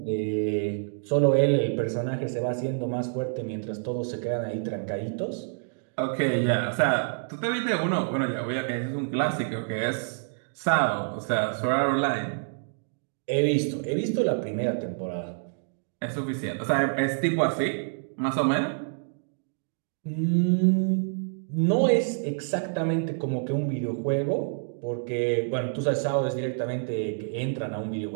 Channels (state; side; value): silent; left; digital silence